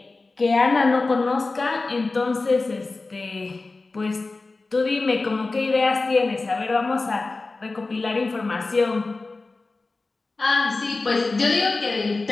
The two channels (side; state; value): right; quieter; 3.6 dB